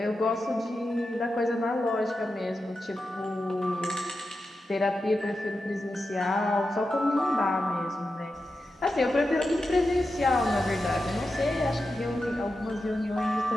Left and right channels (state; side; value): normal; both; correlation 0.90